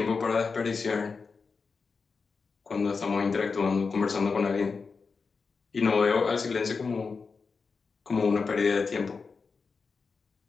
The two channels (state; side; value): quieter; right; 4.8 dB